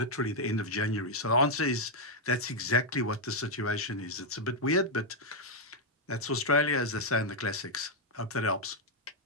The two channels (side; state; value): both; normal; correlation -0.01